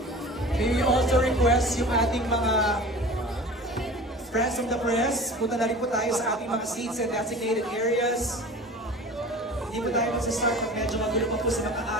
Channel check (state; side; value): normal; both; correlation 0.39